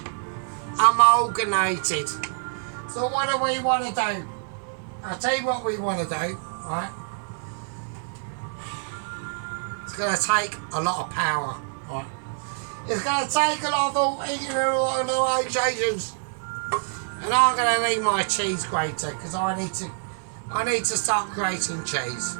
amalgamated. So what do we want to do? I'll tell you what we want to do, right? It's going to take a lot of power, right? It's going to take a lot of organisations. And I'm going to need my cheese grater because I need to start creating cheese,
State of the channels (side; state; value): left; silent; 61 dB below the other